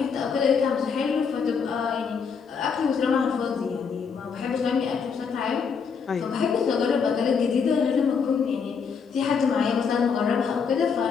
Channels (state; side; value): quieter; right; 6.0 dB